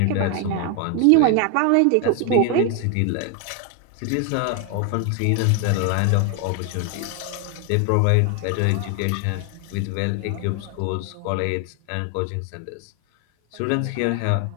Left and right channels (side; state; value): both; different; correlation 0.01